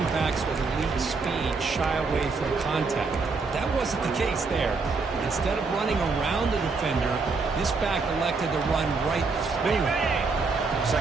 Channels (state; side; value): quieter; left; 4.3 dB